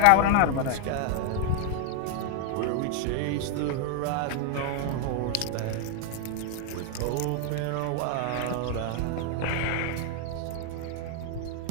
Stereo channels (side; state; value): both; different; correlation 0.00